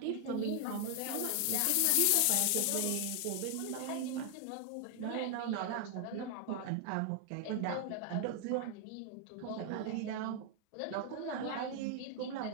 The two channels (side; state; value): both; different; correlation 0.00